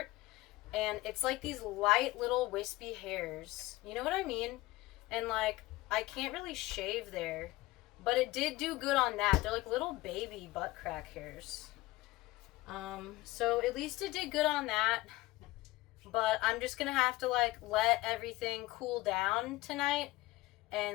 And it's like these light little wispy hairs. You know what I mean? And, like, I can't really shave there. But it did do good on that. They're like little baby butt crack hairs. So at least it did good on that. But I'm just gonna have to, like, let everything cool down tonight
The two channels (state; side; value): quieter; right; 19.0 dB